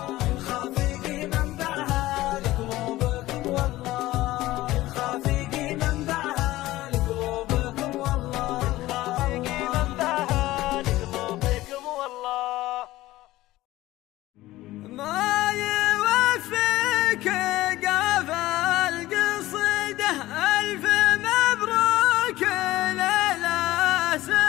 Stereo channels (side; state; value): right; quieter; 16.9 dB